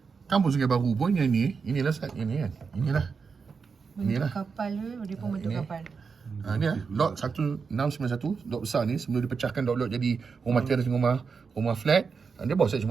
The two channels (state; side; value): quieter; left; 5.4 dB